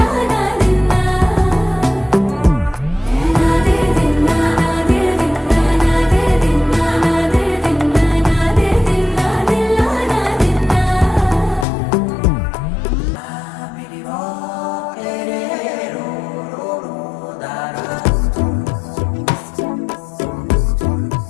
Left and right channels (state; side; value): drops out; right; at 11.7 s